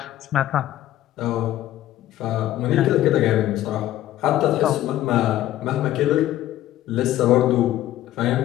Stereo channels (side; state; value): right; quieter; 13.7 dB